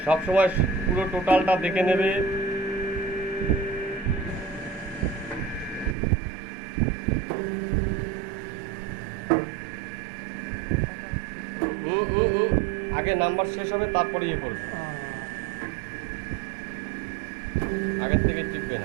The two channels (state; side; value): drops out; left; at 6.0 s